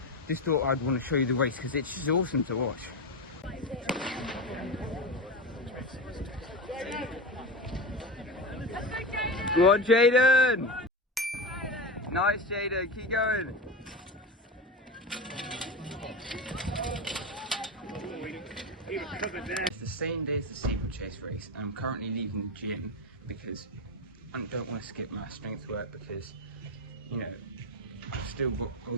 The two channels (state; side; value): normal; both; correlation 0.21